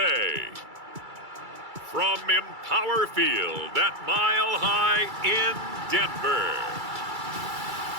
From Empower Field at Mile High in Denver.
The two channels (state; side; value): late; left; 2.3 ms